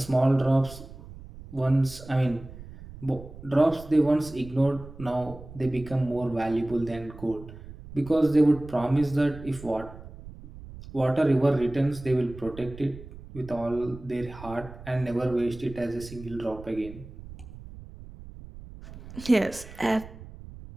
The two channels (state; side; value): noise; right; rumble, 15 dB below the sound